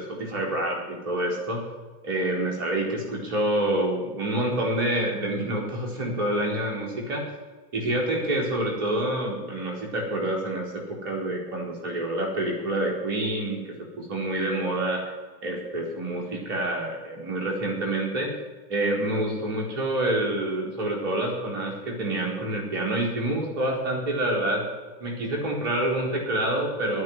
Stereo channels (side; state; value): left; late; 2.1 ms